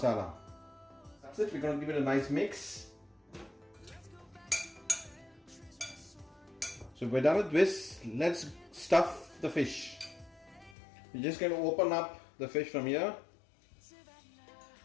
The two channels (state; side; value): drops out; right; at 10.8 s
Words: That's it. We're going to give it a nice mix. So we're done with this. Let's stuff the fish. We're just going to open up the fish from here